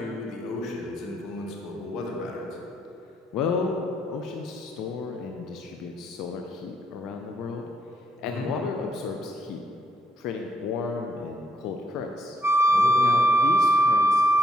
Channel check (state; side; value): normal; both; correlation 0.73